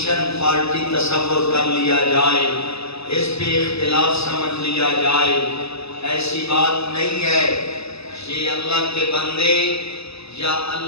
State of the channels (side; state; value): right; late; 0.79 ms